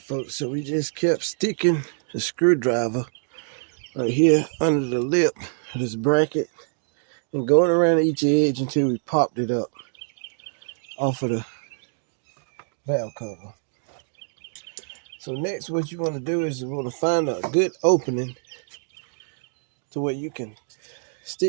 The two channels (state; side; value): silent; left; digital silence